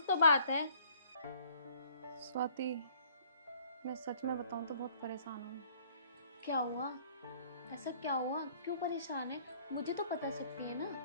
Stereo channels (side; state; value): both; inverted; correlation -0.57